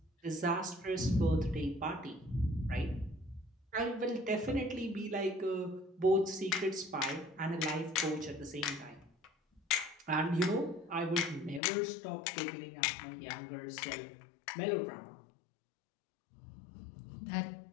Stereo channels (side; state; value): right; drops out; at 11.6 s